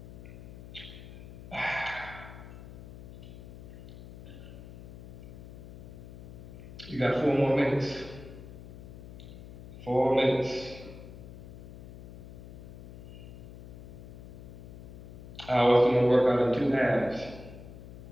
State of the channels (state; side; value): noise; left; hum, 14 dB below the sound